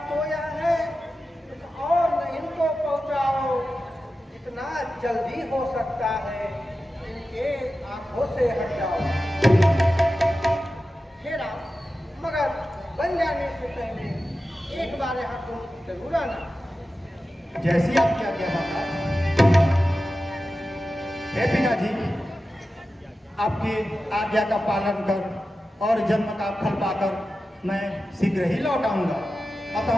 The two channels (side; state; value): both; normal; correlation 0.93